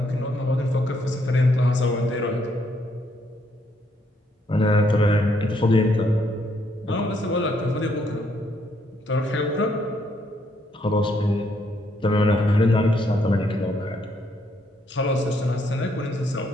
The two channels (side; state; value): both; normal; correlation 0.72